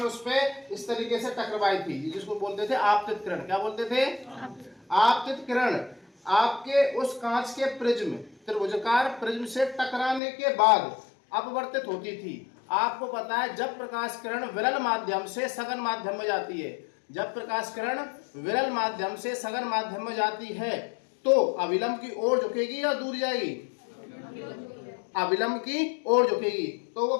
उस पे इस तरीके से टकराई थी, जिसको बोलते थे आपतित किरण। क्या बोलते थे? आपतित किरण आपके उस कांच के प्रिज्म, त्रिभुजाकार प्रिज्म से टकराने के बाद अपवर्तित होती थी। आपको पता है, जब प्रकाश किरण विरल माध्यम से सघन माध्यम में जाती है, जब प्रकाश किरण विरल माध्यम से सघन माध्यम में जाती है तो अविलंब की ओर झुकेगी या दूर जाएगी? अविलंब की ओर झुकेगी। तो वो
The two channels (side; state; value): right; drops out; at 10.2 s